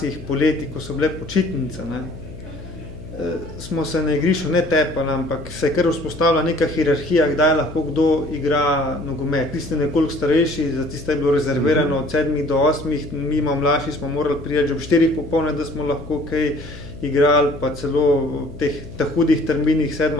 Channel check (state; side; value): noise; left; hum, 15 dB below the sound